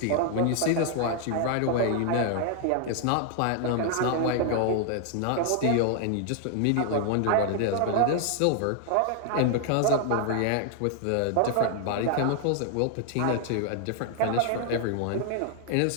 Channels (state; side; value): different; both; correlation 0.00